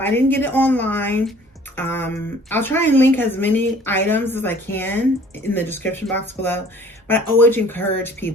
didn't get it online. I'll try and link as many items as I can in the description box below. But I always encourage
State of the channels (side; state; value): both; normal; correlation 0.53